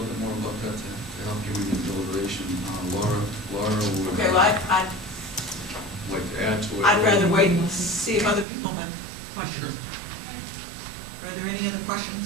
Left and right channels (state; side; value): drops out; left; at 8.5 s